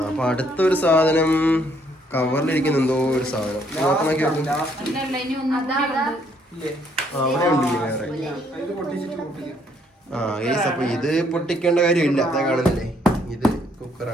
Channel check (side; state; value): both; normal; correlation 0.68